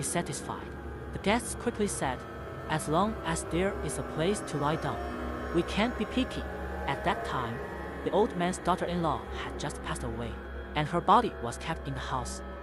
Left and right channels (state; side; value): identical; both; correlation 1.00